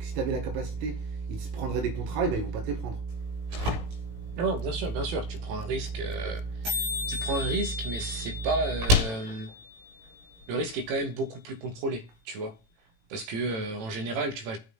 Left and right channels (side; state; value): left; late; 18 ms